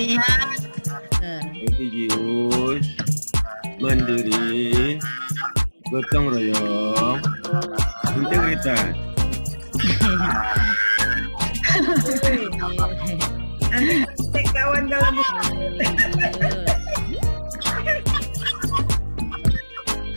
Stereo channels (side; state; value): both; inverted; correlation -1.00